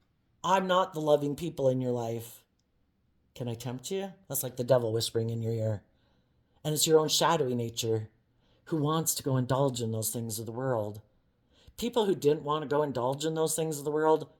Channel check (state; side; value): identical; both; correlation 1.00